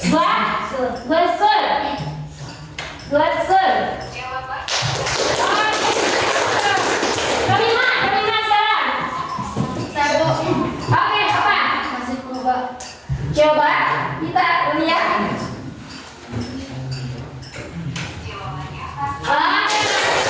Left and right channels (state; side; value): identical; both; correlation 1.00